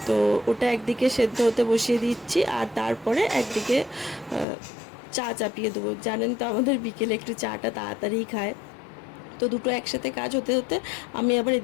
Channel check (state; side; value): drops out; right; at 4.5 s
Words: তো ওটা একদিকে সেদ্ধ হতে বসিয়ে দিচ্ছি, আর তারপরে একদিকে চা চাপিয়ে দেবো। জানেন তো আমাদের বিকেলে একটু চাটা তাড়াতাড়ি খায়। তো দুটো একসাথে কাজ হতে হতে আমি আবার